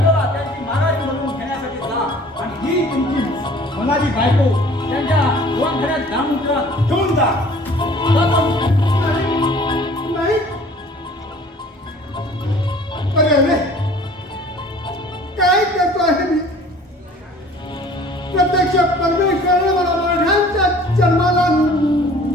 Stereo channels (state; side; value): normal; both; correlation 0.50